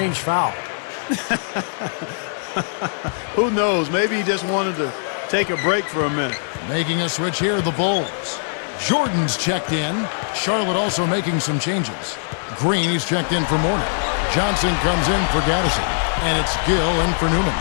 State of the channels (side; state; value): right; silent; digital silence